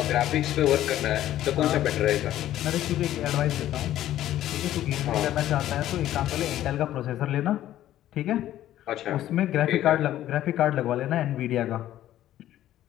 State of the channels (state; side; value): quieter; right; 13.0 dB